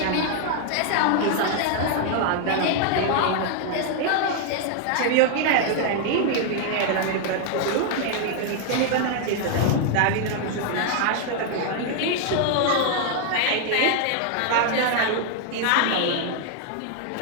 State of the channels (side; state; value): both; different; correlation 0.00